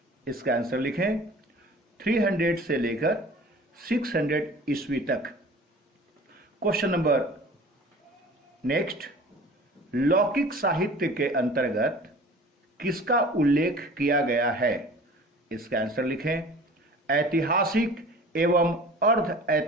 इसका आंसर लिखें 300 से लेकर 600 ईस्वी तक। क्वेश्चन नंबर नेक्स्ट, लौकिक साहित्य के अंतर्गत किसका उल्लेख किया गया है? इसका आंसर लिखें ऐतिहासिक एवं अर्ध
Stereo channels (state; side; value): normal; both; correlation 0.44